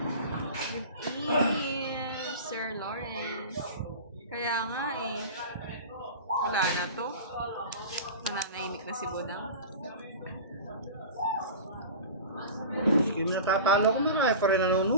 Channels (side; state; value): both; inverted; correlation -0.33